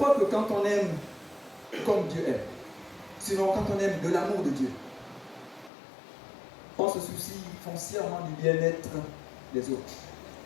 que quand on aime comme Dieu aime, sinon quand on aime de l'amour de Dieu, on se soucie foncièrement du bien-être des autres.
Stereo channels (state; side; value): drops out; right; at 5.7 s